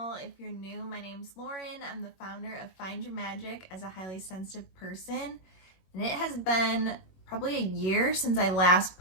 If you're new, my name's Lauren. I'm the founder of Find Your Magic as a highly sensitive person, and it has been probably a year since I last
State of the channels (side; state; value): right; late; 21 ms